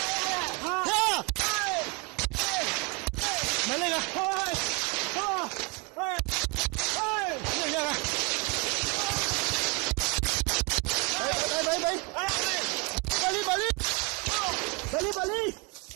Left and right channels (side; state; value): left; quieter; 29.5 dB